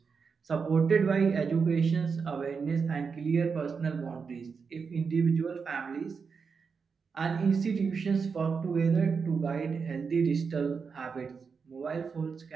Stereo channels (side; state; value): left; quieter; 5.5 dB